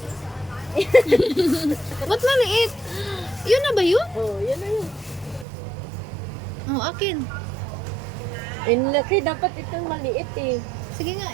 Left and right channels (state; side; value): drops out; left; at 5.5 s